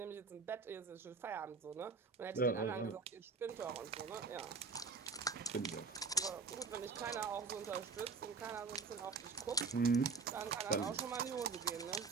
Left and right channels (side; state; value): left; quieter; 4.7 dB